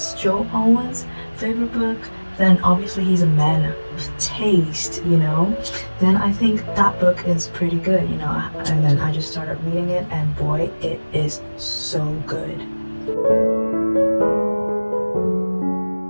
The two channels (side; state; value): both; inverted; correlation -1.00